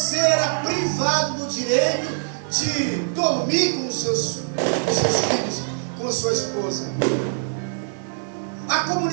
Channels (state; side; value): silent; left; digital silence